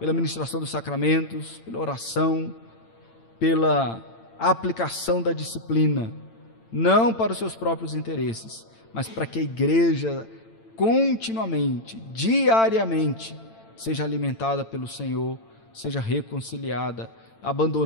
ministração dos sacramentos, pela oração, pela aplicação da disciplina, não para os seus próprios interesses, mas para que a igreja continuamente, diariamente, seja alimentada pelo Senhor, seja reconciliada,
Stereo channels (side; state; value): right; late; 8.9 ms